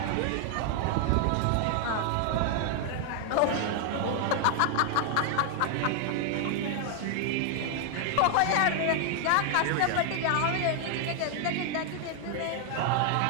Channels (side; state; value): both; different; correlation 0.00